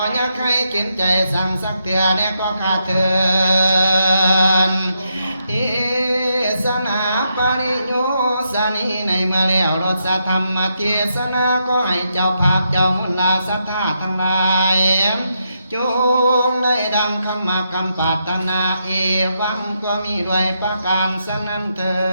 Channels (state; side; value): inverted; both; correlation -0.81